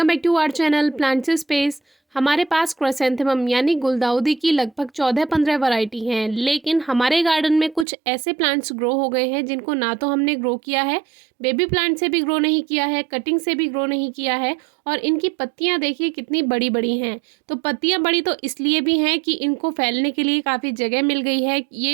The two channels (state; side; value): drops out; left; at 7.9 s